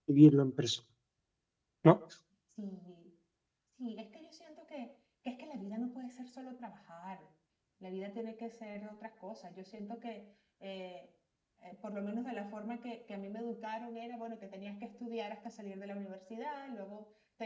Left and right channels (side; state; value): both; identical; correlation 1.00